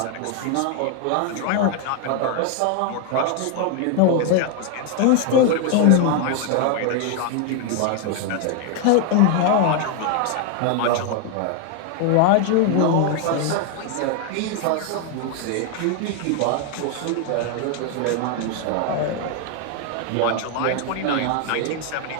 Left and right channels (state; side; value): different; both; correlation 0.01